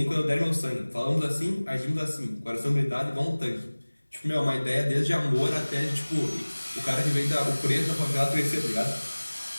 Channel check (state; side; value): inverted; both; correlation -1.00